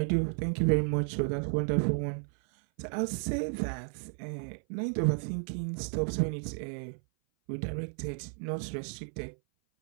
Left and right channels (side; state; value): left; silent; 56 dB below the other